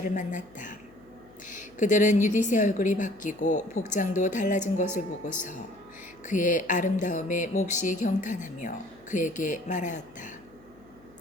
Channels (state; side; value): noise; left; hum, 27 dB below the sound